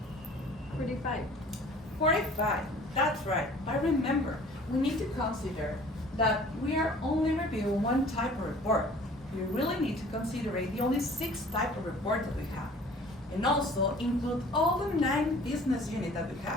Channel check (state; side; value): normal; both; correlation 0.49